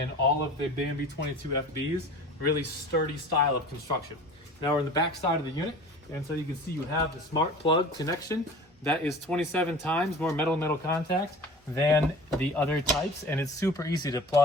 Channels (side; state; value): both; normal; correlation 0.41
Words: all of the Bambi 22FBs. Really sturdy style of construction. Now we're in the back side of the unit, and so you can see you have the smart plug connection. That is 27 times more metal-metal contact than the other types, and it's super easy to